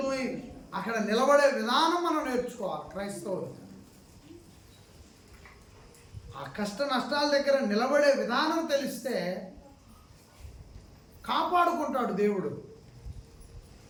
అక్కడ నిలబడే విధానం మనం నేర్చుకోవాలి. క్రైస్తవులు ఆ కష్ట నష్టాల దగ్గర నిలబడే విధానం తెలిస్తే కాపాడుకుంటాడు దేవుడు.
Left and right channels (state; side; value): identical; both; correlation 1.00